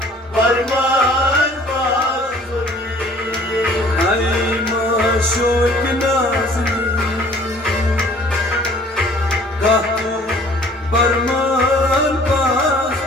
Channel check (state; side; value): normal; both; correlation 0.53